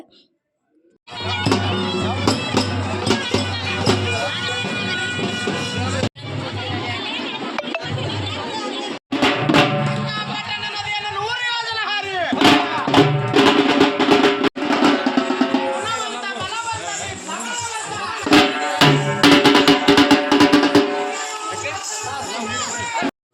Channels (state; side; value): identical; both; correlation 1.00